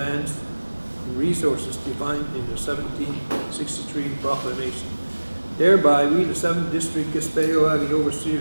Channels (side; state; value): both; inverted; correlation -1.00